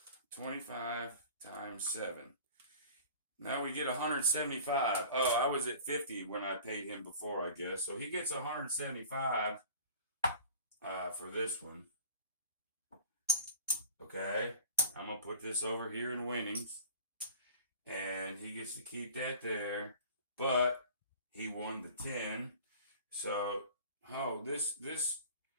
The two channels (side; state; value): both; inverted; correlation -0.42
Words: 25 times 7. Now we get 175. Oh, I was at 50 when I paid him before, I guess. So he gets 175 for this one. Okay, I'm going to put this over here in winnings. And he gets to keep that there. But he won the 10. So, oh, this